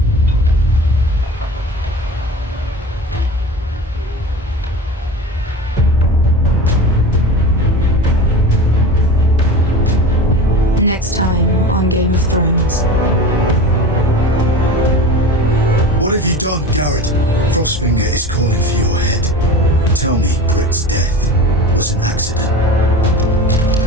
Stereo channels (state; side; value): normal; both; correlation 0.33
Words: Next time on on Game of Thrones. What have you done, Gared? Frostfinger is calling for your head. Tell me Britt's death was an accident.